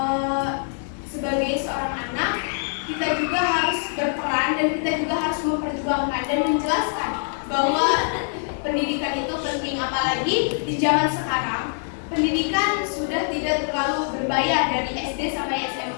sebagai seorang anak kita juga harus berperan dan kita juga harus memperjuangkan dan menjelaskan bahwa pendidikan itu penting, apalagi di zaman sekarang pendidikan sudah tidak terlalu berbayar dari SD sampai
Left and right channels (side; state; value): right; silent; digital silence